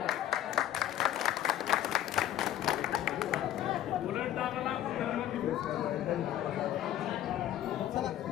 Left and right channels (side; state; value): right; quieter; 12.2 dB